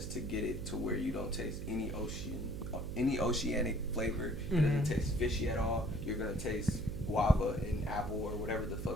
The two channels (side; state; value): right; noise; hum, 6 dB below the sound